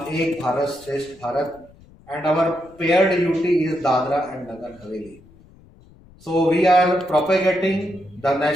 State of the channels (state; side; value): noise; left; rumble, 25 dB below the sound